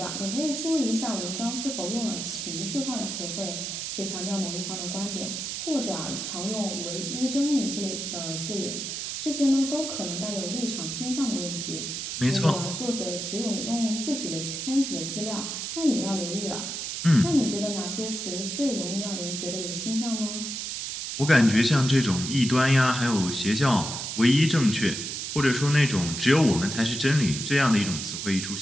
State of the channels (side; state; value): right; noise; hiss, 5 dB below the sound